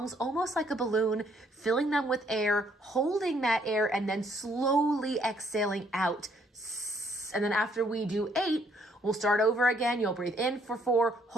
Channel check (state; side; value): normal; both; correlation 0.67